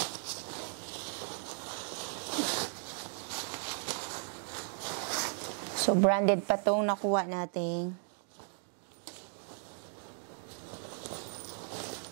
So, branded pa itong nakuha natin.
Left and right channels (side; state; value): left; silent; 54 dB below the other